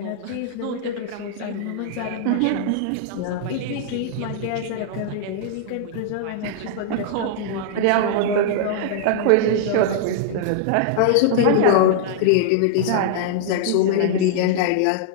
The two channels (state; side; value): different; both; correlation -0.01